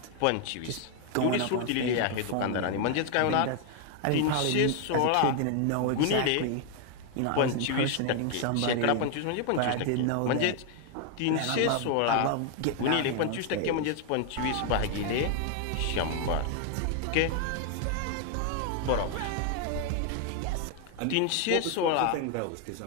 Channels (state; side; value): different; both; correlation 0.00